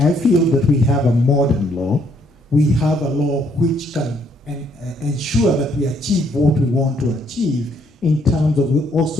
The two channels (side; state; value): both; normal; correlation 0.69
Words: feel that we have a modern law. We have a law which can ensure that we achieve what we want to achieve in terms of